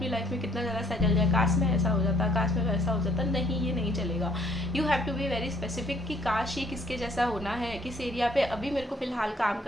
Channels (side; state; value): both; normal; correlation 0.64